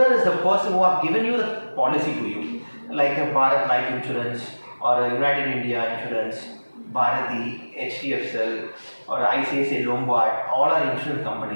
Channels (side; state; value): both; inverted; correlation -1.00